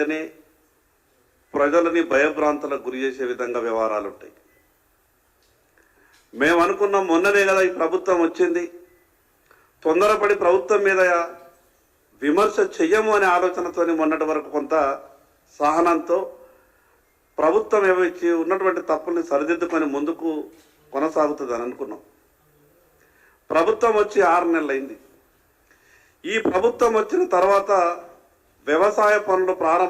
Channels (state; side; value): identical; both; correlation 1.00